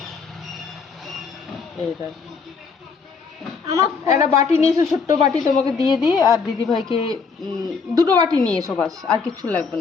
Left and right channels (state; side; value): quieter; right; 5.2 dB